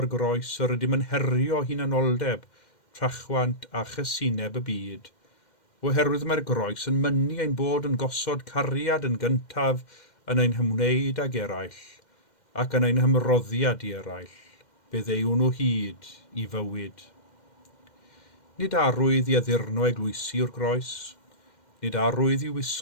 groes yr ydym yn herio hunanoldeb, trachwant a chysineb y byd, oherwydd mae'r groes yn mynnu ein bod yn gosod cariad yn gyntaf yn ein hymwneud ag eraill, ac yn ein hymroddiad i eraill, byddew nhw hyd i fywyd. Nid arwydd i addurno eglwysi yw'r groes, nid arwydd i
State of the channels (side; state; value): right; late; 2.1 ms